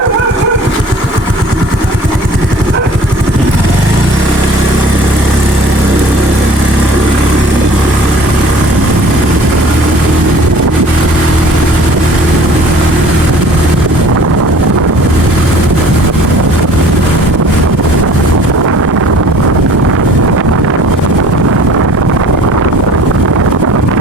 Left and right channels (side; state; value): both; normal; correlation 0.49